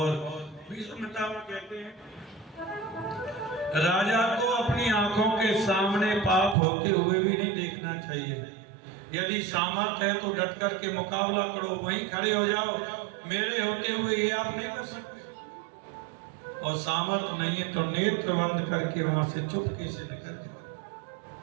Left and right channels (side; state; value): left; drops out; at 6.6 s